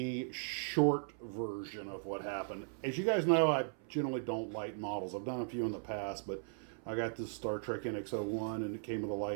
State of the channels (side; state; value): left; silent; 53 dB below the other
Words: short version of what happened. As you guys know, I generally don't light models. I've done a few in the past, but I got this Star Trek NX-01 and it came with a